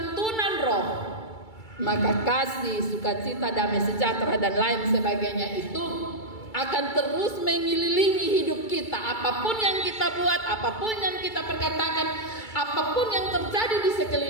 roh, maka kasih, sukacita, damai sejahtera dan lain sebagainya itu akan terus mengelilingi hidup kita. Apapun yang kita buat, apapun yang kita perkatakan, apapun yang terjadi di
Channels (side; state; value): right; late; 2.3 ms